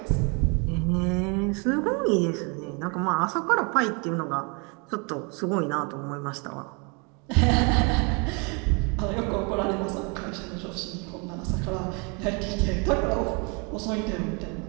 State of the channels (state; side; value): quieter; left; 32.6 dB